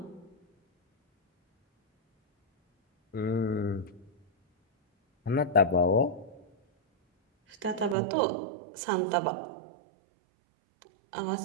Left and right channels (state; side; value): drops out; left; at 8.0 s